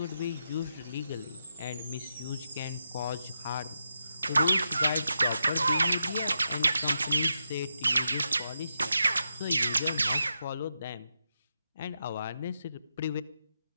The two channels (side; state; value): both; inverted; correlation -0.85